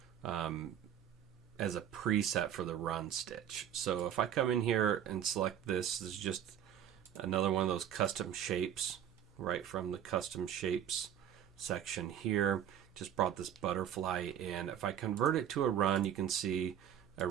as a preset for the run stitch. So if I come in here and select this is just another one of those custom shapes right from the custom shapes section here. Just brought this butterfly in. If I convert it to a run, you can see a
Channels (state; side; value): quieter; left; 9.8 dB